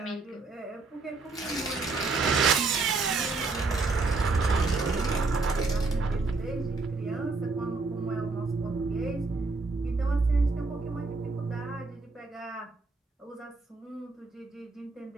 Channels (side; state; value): left; quieter; 3.7 dB